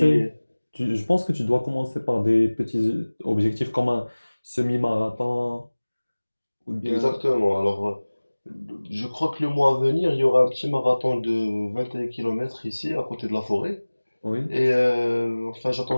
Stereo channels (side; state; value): both; inverted; correlation -1.00